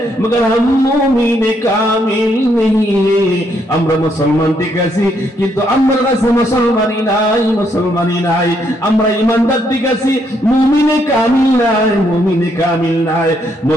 मगर हम मोमिन कामिल नहीं है। আমরা মুসলমান ঠিক আছি কিন্তু আমার কাছে মুসলমানি নাই, আমরা ইমানদার ঠিক আছি মুমিনে কামিল নাই।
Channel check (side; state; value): both; normal; correlation 0.73